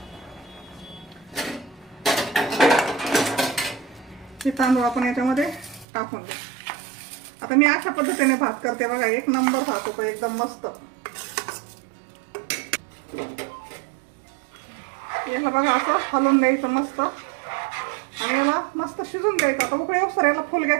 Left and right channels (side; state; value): left; drops out; at 5.9 s